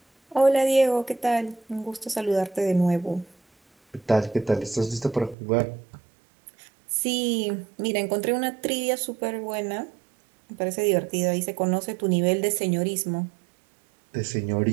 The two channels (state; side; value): drops out; left; at 5.4 s